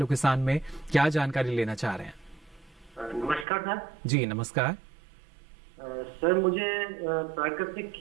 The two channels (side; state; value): left; drops out; at 3.5 s